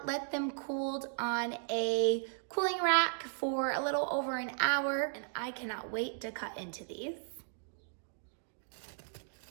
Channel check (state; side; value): silent; left; digital silence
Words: let them cooled on a cooling rack for a little over an hour, and I cannot wait to cut into these.